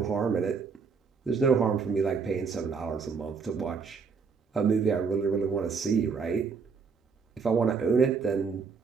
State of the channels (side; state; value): left; quieter; 5.5 dB